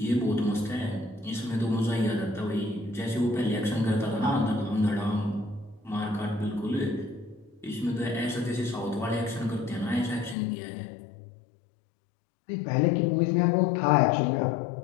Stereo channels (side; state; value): right; drops out; at 10.4 s